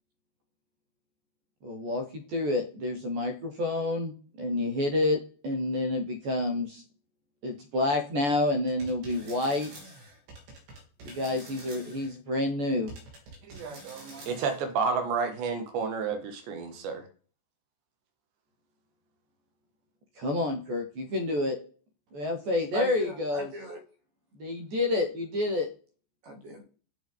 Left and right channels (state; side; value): late; left; 14 ms